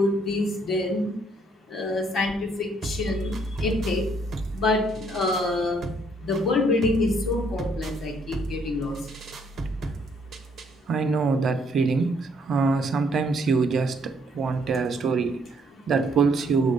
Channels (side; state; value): both; normal; correlation 0.67